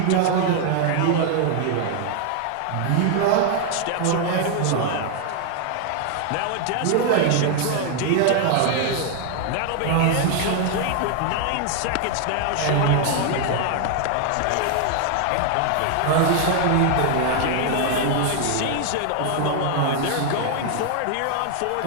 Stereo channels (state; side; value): different; both; correlation 0.00